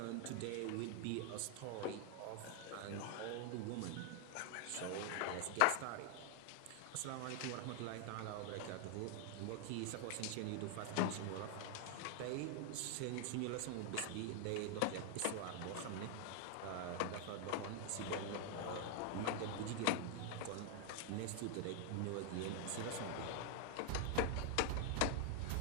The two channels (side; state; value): both; different; correlation 0.00